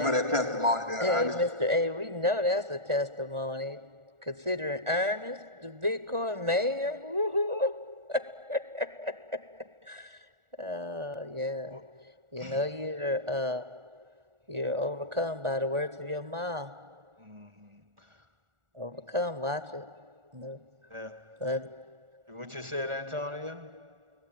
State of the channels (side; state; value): left; late; 1.4 ms